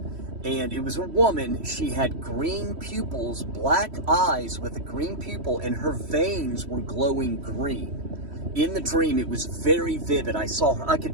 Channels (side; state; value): left; late; 3.1 ms